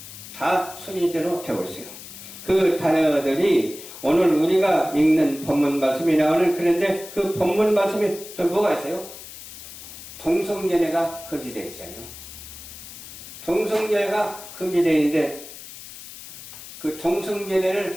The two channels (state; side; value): noise; left; hiss, 14 dB below the sound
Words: 다 순리대로 되고 있어요. 그 단어들이 오늘 우리가 읽는 본문 말씀이 나오는 그런데 그 본문 말씀에 또 뭐가 있어요? 동성연애가 금지되어 있잖아요. 동성연애가 금지되어 있는데 그